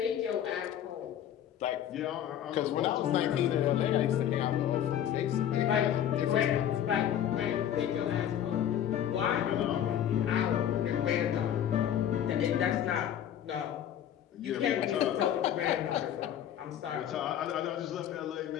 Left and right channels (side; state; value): right; quieter; 10.3 dB